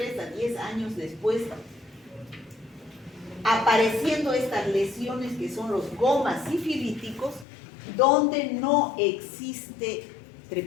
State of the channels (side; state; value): right; drops out; at 7.5 s